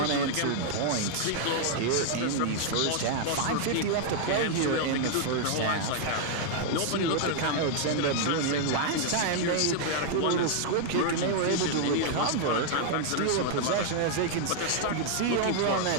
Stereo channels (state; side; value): different; both; correlation 0.00